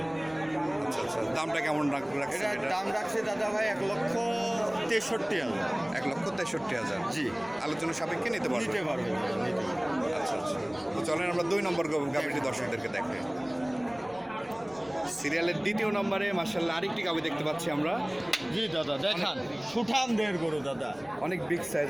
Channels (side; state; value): left; noise; rumble, 26 dB below the sound